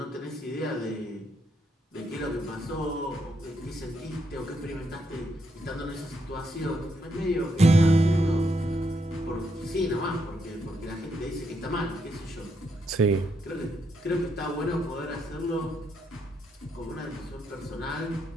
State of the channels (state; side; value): normal; both; correlation 0.78